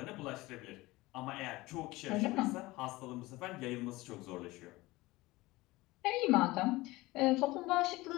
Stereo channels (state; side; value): quieter; right; 20.2 dB